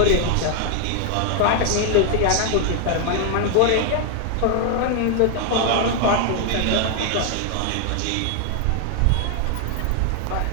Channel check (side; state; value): both; different; correlation 0.00